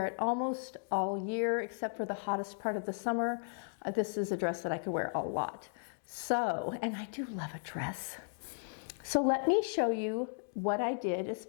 it almost all year, except for the hottest part of the summer. This is a dress that I could wear a lot. So, and I do love a dress. So let me show you what I did as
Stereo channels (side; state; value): right; silent; digital silence